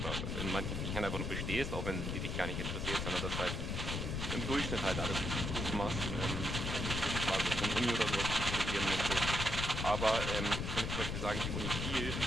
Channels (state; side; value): noise; left; rumble, 2 dB below the sound